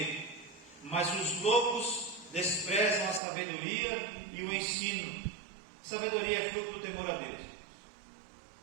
mas os loucos desprezam a sabedoria e o ensino. Sabedoria é fruto do temor a Deus.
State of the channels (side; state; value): left; drops out; at 3.2 s